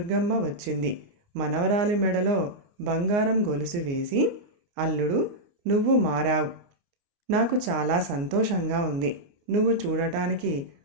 వచ్చింది. మనవరాలి మెడలో బంగారం గొలుసు వేసి, అల్లుడు, నువ్వు మారావు. నాకు చాలా సంతోషంగా ఉంది. నువ్వు చూడటానికి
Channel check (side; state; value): left; late; 29 ms